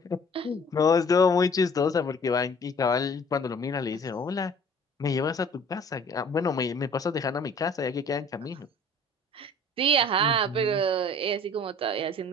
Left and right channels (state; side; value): normal; both; correlation 0.51